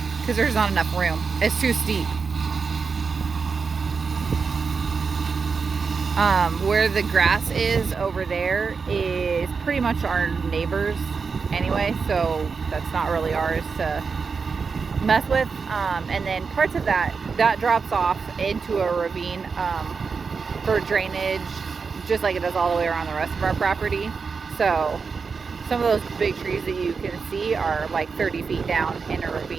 because there's not enough room. It's too steep. Where the grass is over there is pretty much our neighbor's anyway, so that's not really ours to mess with. And then parts of that drops off into a ravine for drainage, just like it does all the way around the rest of our property. So some of those big trees that you can see are like 30 feet down in a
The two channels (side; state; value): left; quieter; 5.2 dB